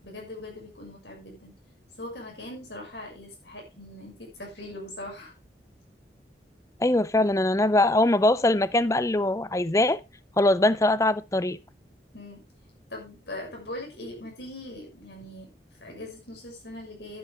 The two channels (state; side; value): normal; both; correlation 0.63